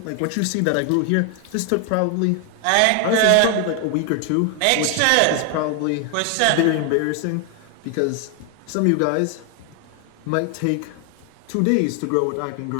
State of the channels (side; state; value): both; different; correlation 0.00